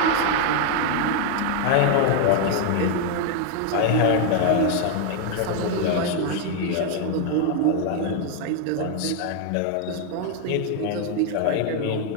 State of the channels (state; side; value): different; both; correlation 0.00